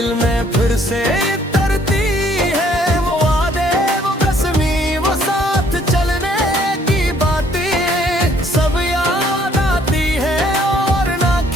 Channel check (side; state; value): both; normal; correlation 0.63